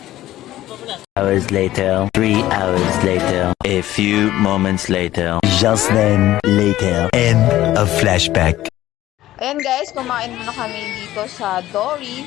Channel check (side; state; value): right; quieter; 14.7 dB